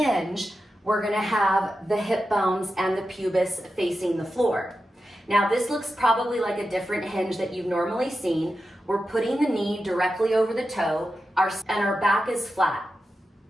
we're gonna have the hip bones and the pubis facing the floor. Now this looks probably like a different hinge that you've normally seen. We're putting the knee directly over the toe, and our back is flat.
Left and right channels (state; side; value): normal; both; correlation 0.91